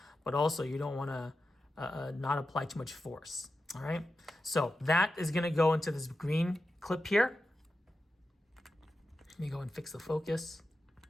but also you don't want to not apply too much force. All right, so that is gonna go into this green clip here. Let me go and fix the focus.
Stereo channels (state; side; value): normal; both; correlation 0.91